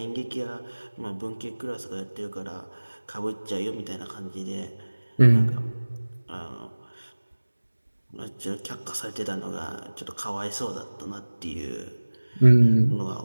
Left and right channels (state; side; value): inverted; both; correlation -1.00